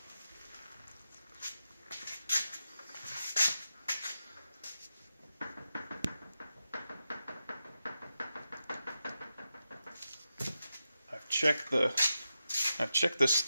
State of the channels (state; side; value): inverted; both; correlation -0.89